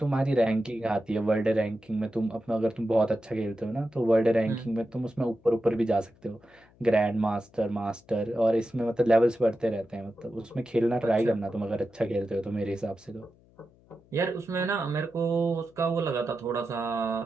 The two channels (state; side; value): noise; left; hum, 29 dB below the sound